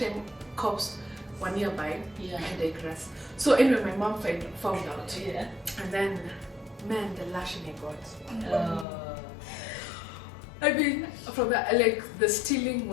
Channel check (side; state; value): right; drops out; at 8.8 s